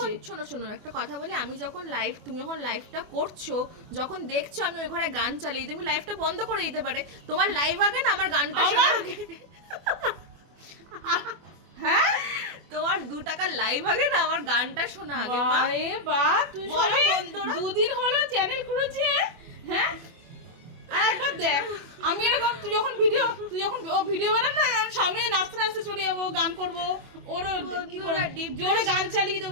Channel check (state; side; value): late; left; 24 ms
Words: শোনো শোনো একটা কথা বলি, আমি যখন লাইভ, তুমি যখন লাইভটা করছো, যখন দেখছো আমি ওই ঘরে গান চালিয়ে, তুমি লাইভটা বন্ধ করে দিতে পারে। তোমার লাইভ আগে না আমার গানটা শোনা আগে। হ্যাঁ, তোমার 2 টাকার লাইভ আগে না আমার গানটা শোনা আগে মা। আরে বাহ, তুই বলো সবে বন্ধুরা। 2 দিন হলো চ্যানেল খুলেছে। হ্যাঁ, আর একবার দেখ, আমি এরকম তুই যখন ও ভিডিও বানান না, আমি সামনে নাচতে নাচতে চলে যাবো, গান করবো, ওরও কি করে বন্ধুরা, deep জোরে গান চালিয়ে